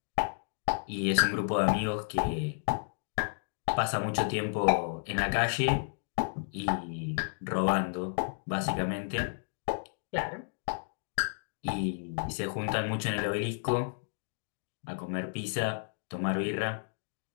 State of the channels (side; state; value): right; silent; digital silence